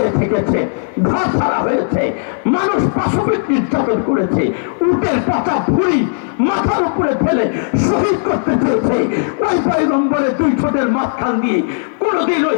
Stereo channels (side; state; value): right; silent; digital silence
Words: থেকেছে, ঘর ছাড়া হয়েছে, মানুষ পাশবিক নির্যাতন করেছে, উটের পচা ভুঁড়ি মাথার উপরে ফেলে শহীদ করতে চেয়েছে। ওই পয়গম্বরের 2 ঠোঁটের মাঝখান দিয়ে কোনদিন ওই